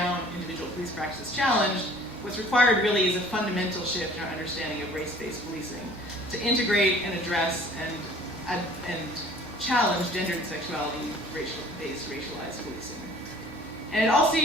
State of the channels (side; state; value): both; normal; correlation 0.51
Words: individual police practices challenged, what's required really is a fundamental shift in our understanding of race-based policing to integrate and address and challenge gender and sexuality based racialized policing. And it also